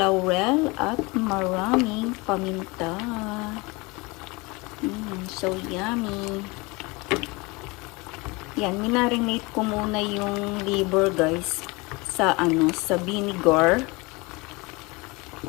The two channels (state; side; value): quieter; right; 25.5 dB